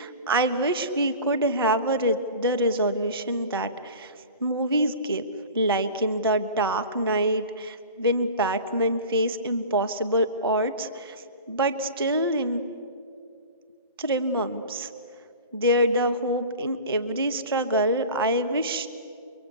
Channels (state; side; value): inverted; both; correlation -0.37